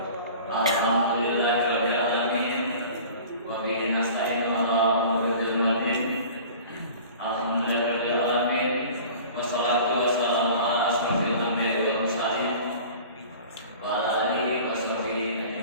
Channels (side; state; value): both; inverted; correlation -0.43